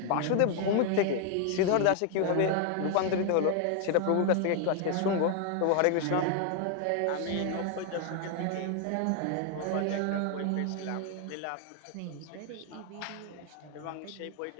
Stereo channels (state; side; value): different; both; correlation 0.00